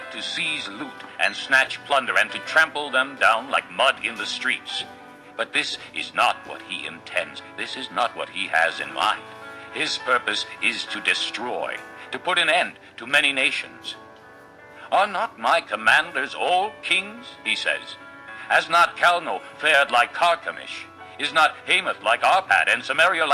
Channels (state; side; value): identical; both; correlation 1.00